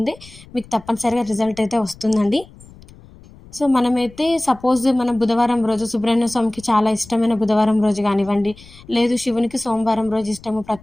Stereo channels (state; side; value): noise; left; rumble, 22 dB below the sound